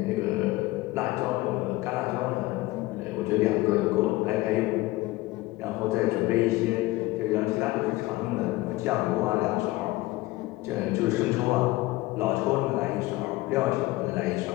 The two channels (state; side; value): quieter; right; 19.3 dB